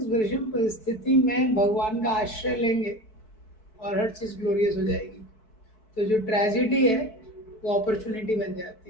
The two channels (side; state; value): right; late; 4.6 ms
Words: विषम परिस्थिति में भगवान का आश्रय लेंगे और हर चीज ग्लोरियस हो जाएगी। तो जो ट्रेजिडी है वो अपॉर्चुनिटी बन जाती